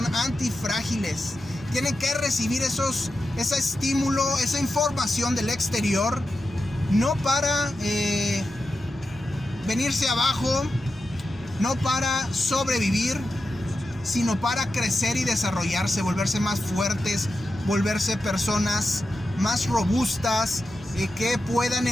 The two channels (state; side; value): normal; both; correlation 0.90